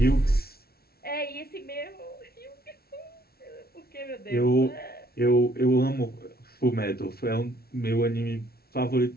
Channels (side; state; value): right; late; 0.44 ms